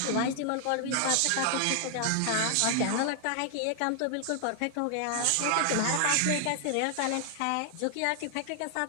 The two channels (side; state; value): both; different; correlation 0.00